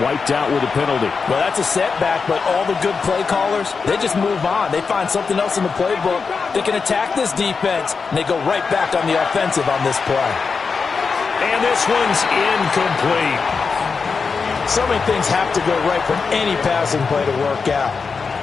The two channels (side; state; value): right; quieter; 5.1 dB